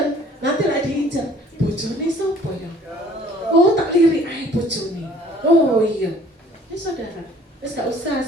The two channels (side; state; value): both; normal; correlation 0.54